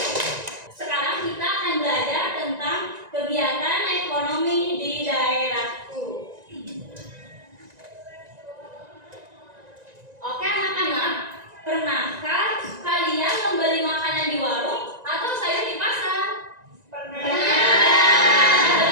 Sekarang kita akan belajar tentang kegiatan ekonomi di daerahku. Oke anak-anak, pernahkah kalian membeli makanan di warung atau sayur di pasar?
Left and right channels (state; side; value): late; left; 1.9 ms